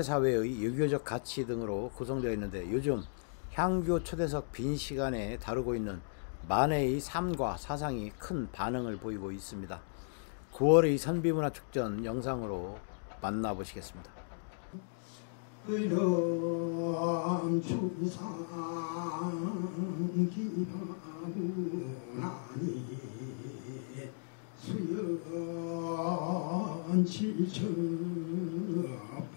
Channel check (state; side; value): silent; right; digital silence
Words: 유교적 가치 등으로 구성되어 있는데, 요즘 향교 초대석 빈 시간에 다루고 있는 만해의 삶과 사상이 큰 반응을 보이고 있습니다. 9월의 선비문화축전 영상으로 만나보시겠습니다. 의람 추상 기바구나니 수연 칠처